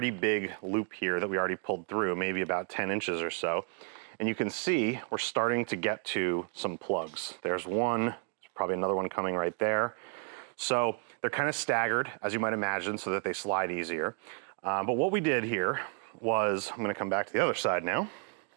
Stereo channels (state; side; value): quieter; left; 36.9 dB